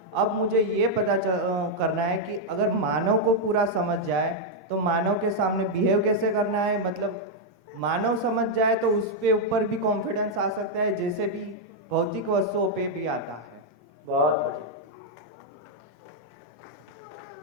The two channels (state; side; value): normal; both; correlation -0.02